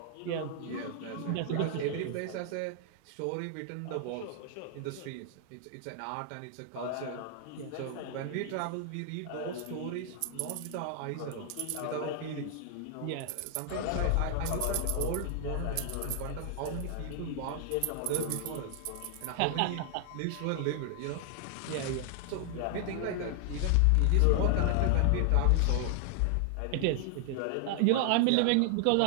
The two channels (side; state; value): both; different; correlation 0.00